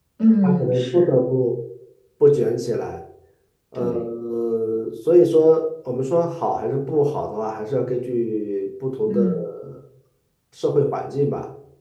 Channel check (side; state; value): both; identical; correlation 1.00